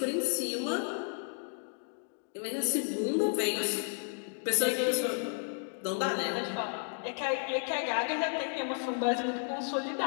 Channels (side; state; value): right; silent; 56 dB below the other